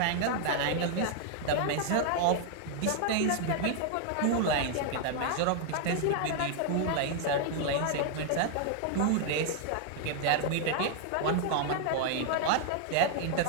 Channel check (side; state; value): both; different; correlation 0.00